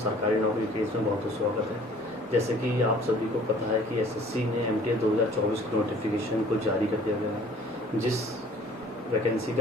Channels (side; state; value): both; normal; correlation 0.51